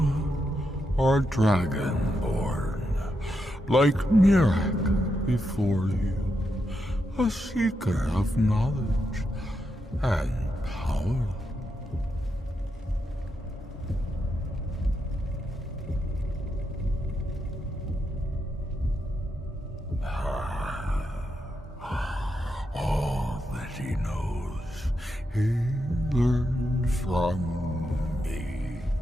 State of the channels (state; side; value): normal; both; correlation 0.84